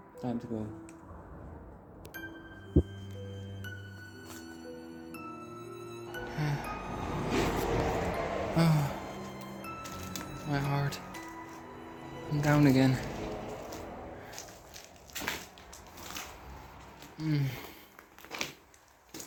Time to go. Oh, my heart. I'm down again.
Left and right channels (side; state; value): both; identical; correlation 1.00